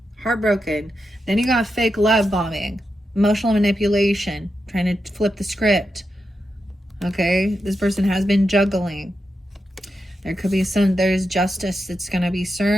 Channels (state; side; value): normal; both; correlation 0.87